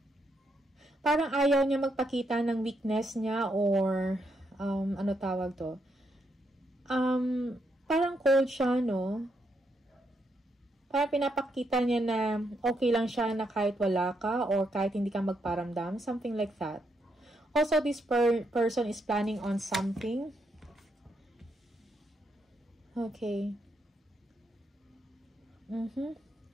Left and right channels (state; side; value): normal; both; correlation 0.78